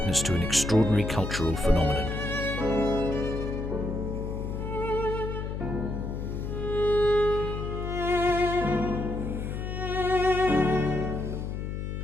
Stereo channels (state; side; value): noise; left; hum, 4 dB below the sound